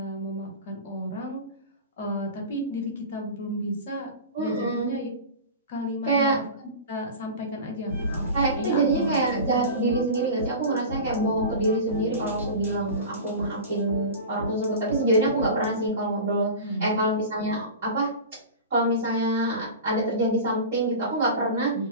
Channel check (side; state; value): both; inverted; correlation -0.31